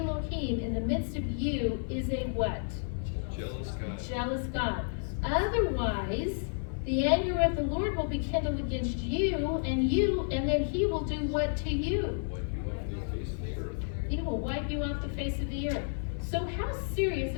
in the midst of you is a what? Jealous God. Jealous God. Otherwise, the anger of the Lord will be kindled against you, and then he will do what to you? Wipe you off the face of the earth. He will wipe you off the face of the earth. So how serious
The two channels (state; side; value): silent; right; 57 dB below the other